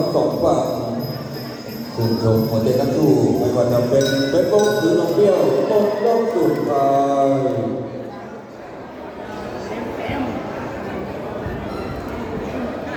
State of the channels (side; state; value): both; identical; correlation 1.00